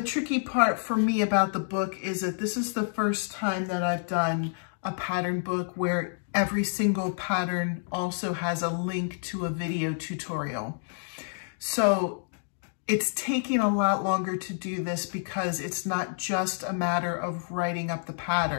tricky part for me about the book is that this is the first time that I've done a pattern book where every single pattern also has a link to a video tutorial. So it's taking a lot longer to do this because it's not just a matter of writing up the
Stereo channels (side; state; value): right; silent; digital silence